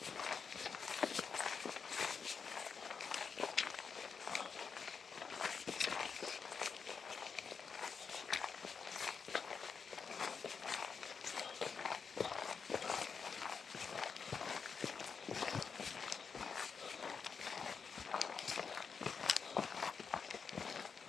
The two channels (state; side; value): quieter; right; 5.8 dB